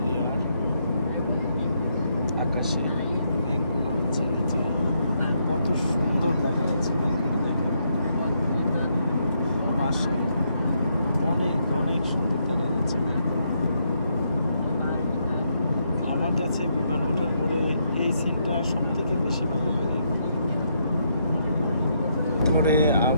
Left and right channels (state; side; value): inverted; both; correlation -0.77